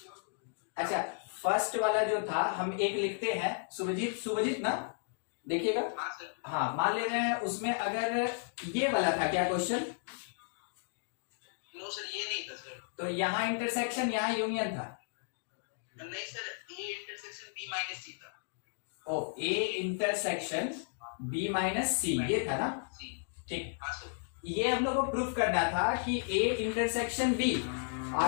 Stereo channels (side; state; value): right; silent; digital silence